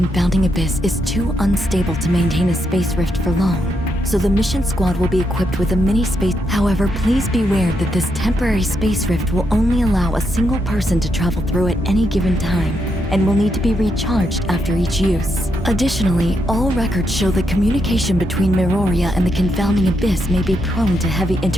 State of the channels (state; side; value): normal; both; correlation 0.80